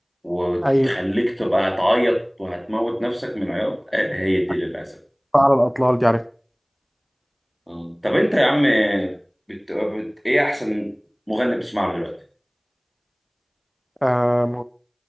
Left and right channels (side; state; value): both; identical; correlation 1.00